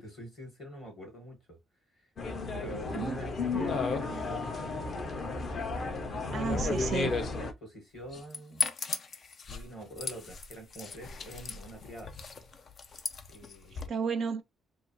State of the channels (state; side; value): normal; both; correlation 0.71